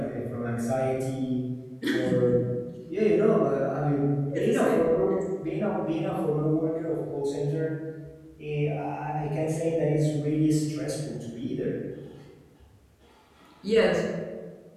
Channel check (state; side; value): identical; both; correlation 1.00